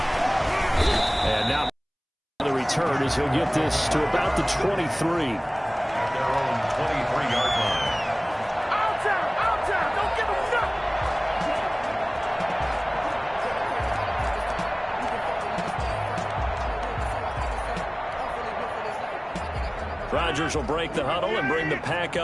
And now the return as he'll get this to about the 23. At their own 23-yard line. Outside, don't give him nothing. Rodgers will break the huddle and bring the pack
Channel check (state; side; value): identical; both; correlation 1.00